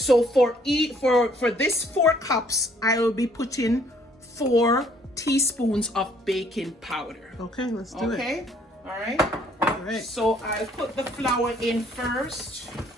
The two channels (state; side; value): normal; both; correlation 0.62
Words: for this 4 cups, I will be putting 4 teaspoons of baking powder. Okay, let's do it. Okay, all right. All right. So I'll put the flour in first.